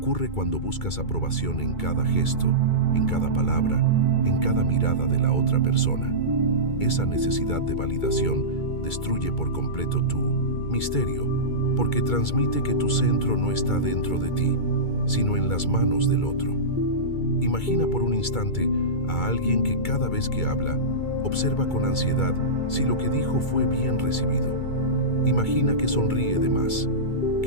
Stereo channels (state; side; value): late; right; 2.3 ms